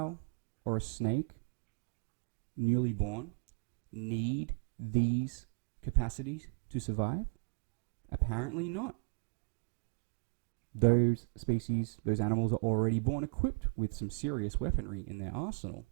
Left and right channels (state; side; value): quieter; left; 37.5 dB